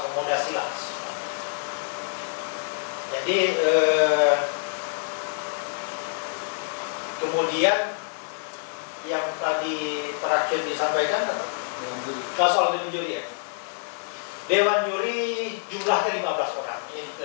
langsung. Jadi kemudian yang tadi terakhir disampaikan apa? Soal dewan juri ya. Dewan juri jumlahnya 15 orang. Ini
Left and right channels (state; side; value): silent; right; digital silence